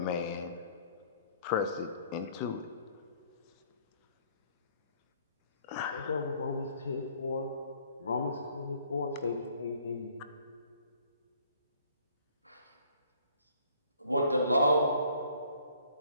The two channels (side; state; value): both; inverted; correlation -0.60